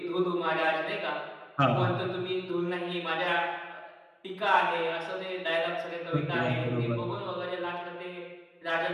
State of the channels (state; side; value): identical; both; correlation 1.00